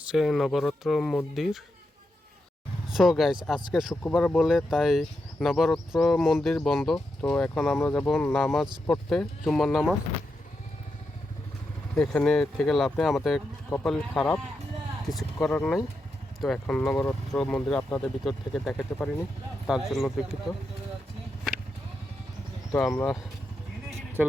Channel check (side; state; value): both; normal; correlation 0.86